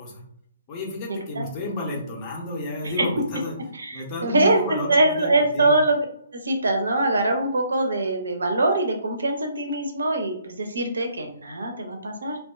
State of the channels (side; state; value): both; inverted; correlation -0.67